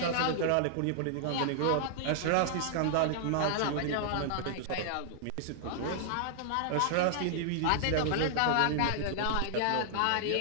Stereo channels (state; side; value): different; both; correlation -0.01